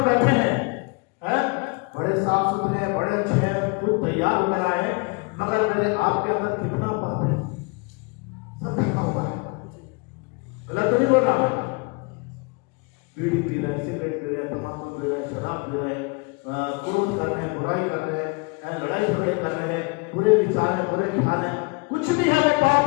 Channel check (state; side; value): quieter; right; 30.7 dB